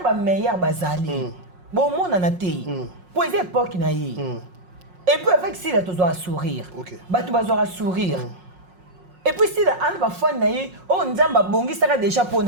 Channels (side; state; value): left; late; 5.5 ms